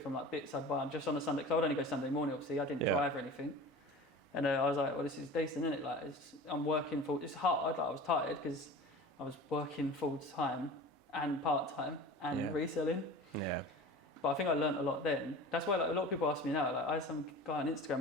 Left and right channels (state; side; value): normal; both; correlation 0.37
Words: like bits I'd buy just on a Sunday. Because I would only go Sunday morning. Obviously, I didn't drive or anything. And I was like, well, this is decent, isn't it? Like, I'm working it's hard. Like, I was tired because I was working full time and part time and reselling. Yeah. But I think I learnt a lot then. That's why like a lot of people ask me now. Like, I had some guy on Instagram